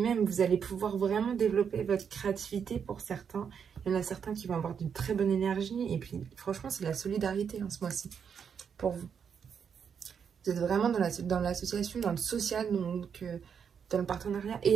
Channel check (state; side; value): quieter; left; 7.1 dB